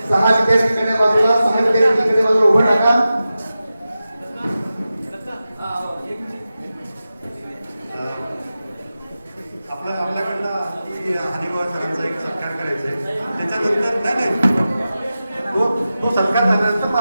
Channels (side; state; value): both; inverted; correlation -0.93